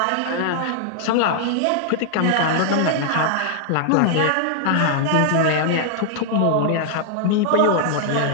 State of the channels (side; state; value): both; different; correlation -0.01